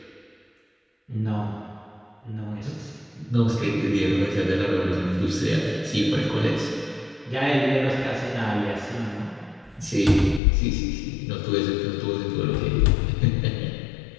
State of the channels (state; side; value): drops out; right; at 10.4 s